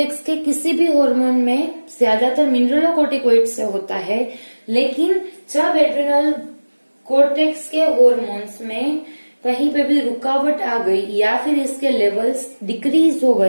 के किसी भी हार्मोन में ज्यादातर मिनरलोकोर्टिकोइड से होता है, लेकिन जब एड्रिनल कोर्टेक्स के हार्मोन्स में कहीं पे भी रुकावट आ गई या फिर इसके लेवल्स डिक्रीज हो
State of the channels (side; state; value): both; inverted; correlation -1.00